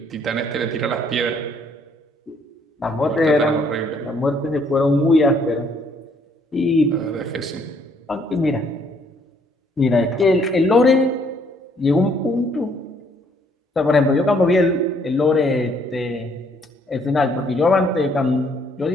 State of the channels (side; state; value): both; normal; correlation 0.66